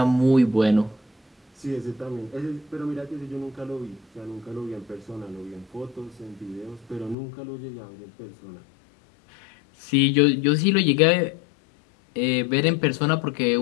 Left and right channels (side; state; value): right; drops out; at 7.2 s